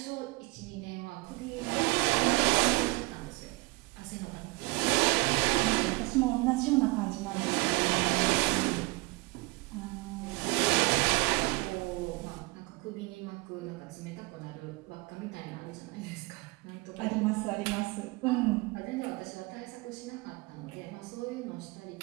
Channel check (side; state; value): left; quieter; 24.4 dB